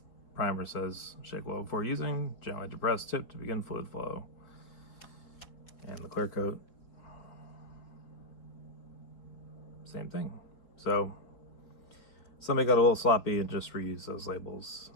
primer says shake well before using, gently depress tip to begin fluid flow. And the clear coat, same thing. So somebody got a little sloppy and just reused those labels,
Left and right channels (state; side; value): late; right; 4.1 ms